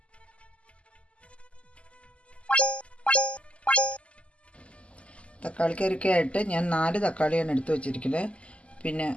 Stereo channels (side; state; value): right; late; 0.058 ms